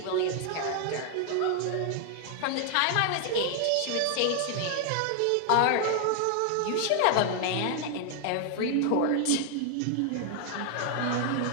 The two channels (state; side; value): different; both; correlation 0.00